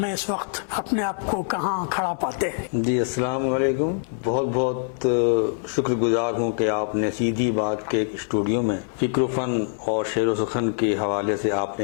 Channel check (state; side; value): silent; right; 63 dB below the other